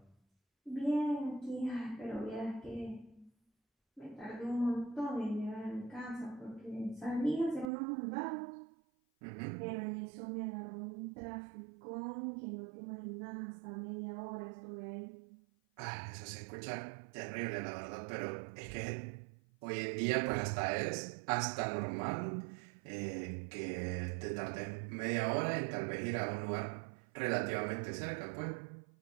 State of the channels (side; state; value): left; drops out; at 7.7 s